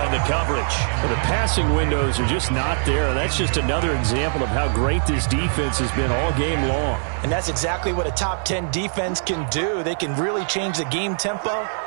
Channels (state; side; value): silent; left; 59 dB below the other